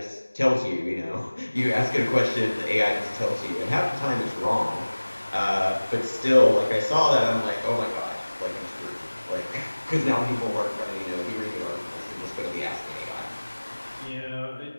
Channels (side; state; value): both; inverted; correlation -1.00